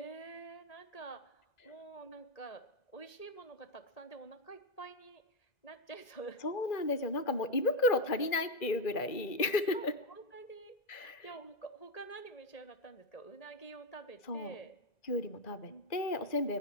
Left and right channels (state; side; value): late; right; 1.9 ms